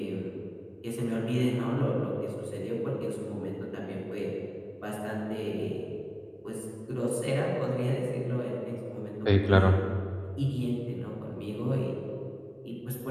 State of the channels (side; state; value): both; identical; correlation 1.00